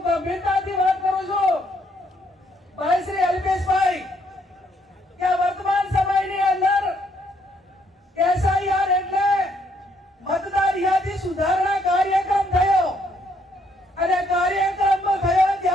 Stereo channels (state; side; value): normal; both; correlation 0.70